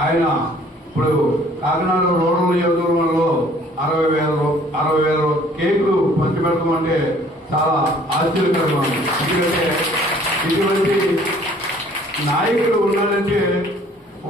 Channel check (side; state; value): both; normal; correlation 0.56